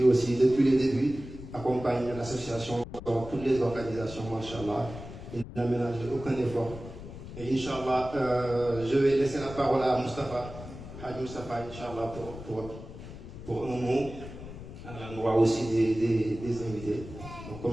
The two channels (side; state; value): left; noise; rumble, 13 dB below the sound